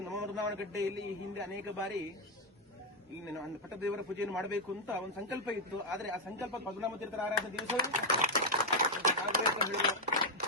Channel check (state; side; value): normal; both; correlation 0.02